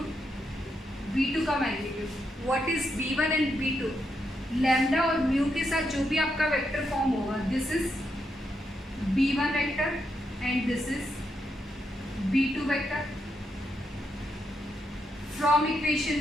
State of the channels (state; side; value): normal; both; correlation 0.82